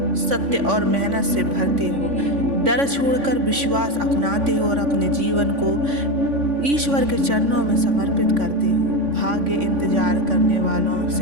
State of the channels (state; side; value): late; left; 3.5 ms